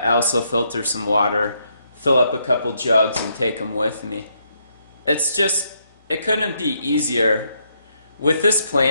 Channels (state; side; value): inverted; both; correlation -0.76